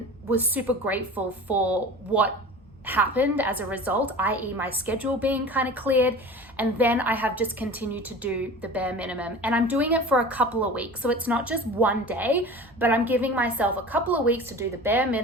was super grateful for what happened as a result, i.e. my schedule being kind of cleared. And then I have just continued to do the bare minimum. And I'm doing it for a couple of weeks. So it's not just one day, but I'm giving myself a couple of weeks to do the bare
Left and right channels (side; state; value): both; normal; correlation 0.37